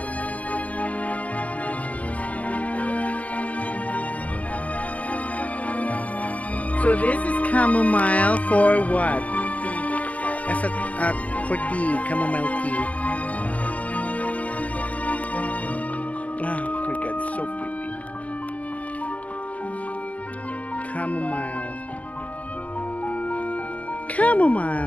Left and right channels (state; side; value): late; right; 0.068 ms